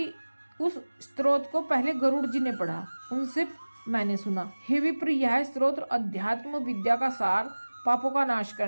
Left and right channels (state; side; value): inverted; both; correlation -1.00